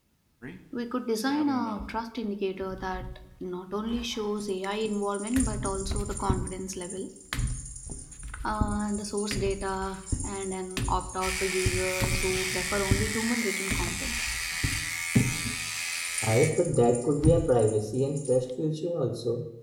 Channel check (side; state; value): both; identical; correlation 1.00